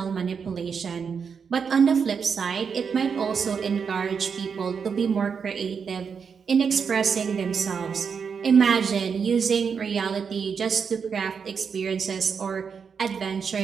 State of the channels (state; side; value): quieter; left; 6.2 dB